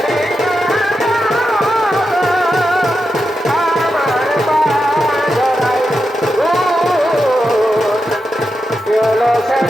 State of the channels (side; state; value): both; normal; correlation 0.88